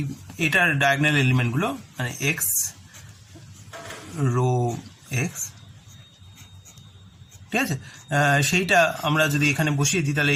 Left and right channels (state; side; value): identical; both; correlation 1.00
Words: এটার ডায়াগোনাল এলিমেন্টগুলো মানে এক্স রো এক্স। ঠিক আছে, সেইটা আমরা যদি এখানে বসিয়ে দিই তাহলে